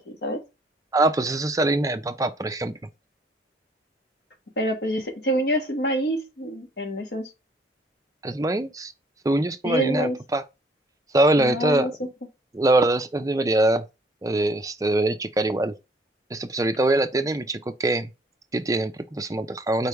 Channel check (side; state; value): both; normal; correlation 0.60